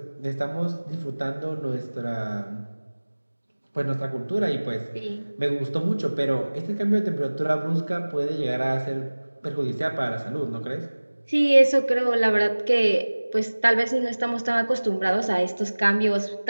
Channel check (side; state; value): both; inverted; correlation -1.00